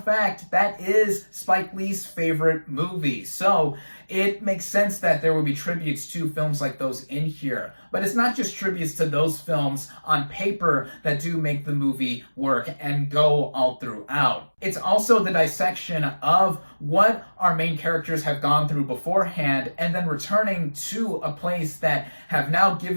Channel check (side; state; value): both; inverted; correlation -1.00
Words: fact, that is Spike Lee's favorite movie. So it makes sense that there will be tributes to films like those in here. But it's not just tributes to those films on paper that do make the movie work and go all throughout. It's also the dissection of what our main characters have gone through beforehand and then returning to a place that have now